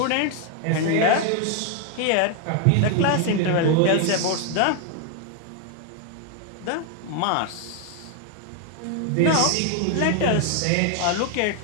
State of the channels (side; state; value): both; different; correlation 0.01